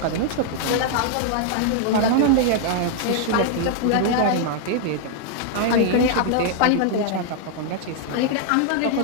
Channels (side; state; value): both; different; correlation 0.00